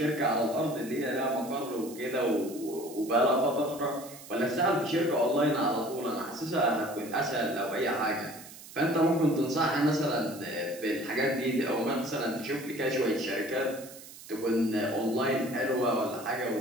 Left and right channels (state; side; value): noise; right; hiss, 17 dB below the sound